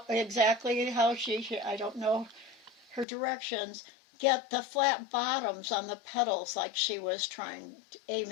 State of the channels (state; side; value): drops out; right; at 3.1 s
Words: exactly how I don't know her directions, get the flat bottoms on the petals like she was